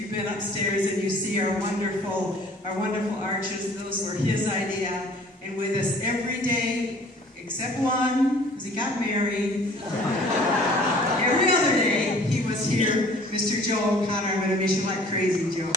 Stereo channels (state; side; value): normal; both; correlation 0.52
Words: been upstairs and you see our wonderful arches, those were his idea. And with us every day, except one, because he got married. Every other day, he was here, Mr. Joe O'Connor. I'm going to miss you like crazy, Joe.